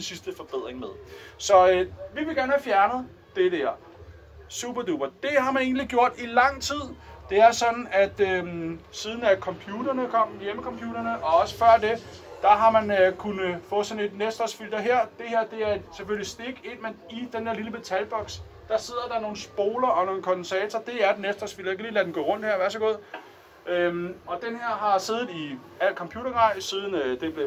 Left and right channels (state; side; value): identical; both; correlation 1.00